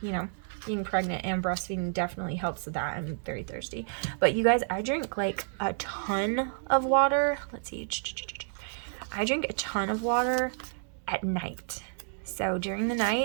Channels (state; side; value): silent; left; digital silence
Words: you know, being pregnant and breastfeeding definitely helps with that. I'm very thirsty. But you guys, I drink like a ton of water. Let's see. I drink a ton of water at night. So during the